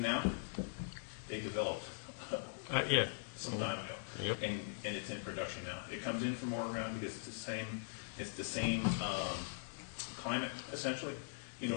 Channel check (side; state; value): right; silent; digital silence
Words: now, they developed Yeah. some time ago, Yep. and it's in production now. It comes in from Oregon because it's the same climate essentially. You